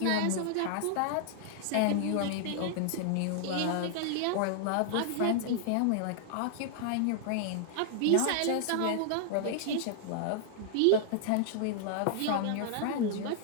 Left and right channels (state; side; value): different; both; correlation -0.01